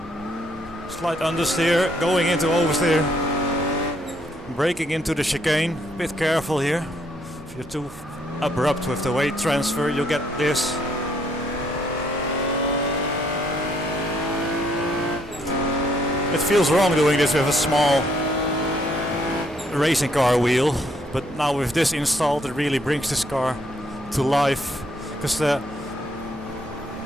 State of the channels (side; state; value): both; normal; correlation 0.70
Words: Slight understeer, going into oversteer. Braking into the chicane. Bit careful here. If you're too abrupt with the weight transfer, you'll get this. It feels wrong doing this with a small racing car wheel, but now with this installed it really brings this car to life, because the